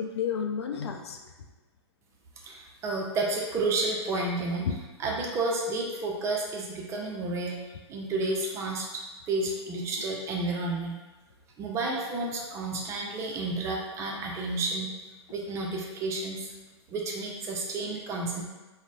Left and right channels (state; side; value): normal; both; correlation 0.09